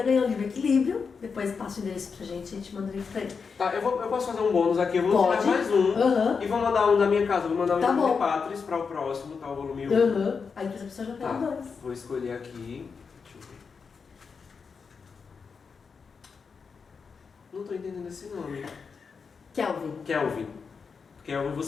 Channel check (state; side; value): quieter; right; 5.5 dB